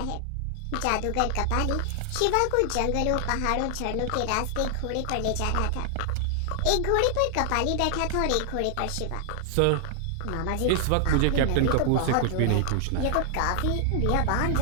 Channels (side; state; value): both; different; correlation 0.00